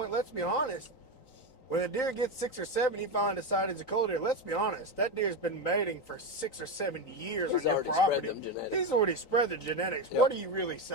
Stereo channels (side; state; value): right; late; 3.9 ms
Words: let's be honest, when a deer gets 6 or 7, you finally decide it's a cull deer. Let's be honest, that deer's been mating for 6 or 7 years on your property. He's already spread the genetics. Yep. What are you really